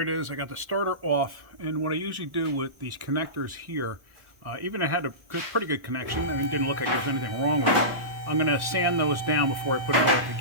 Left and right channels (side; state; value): left; late; 1.0 ms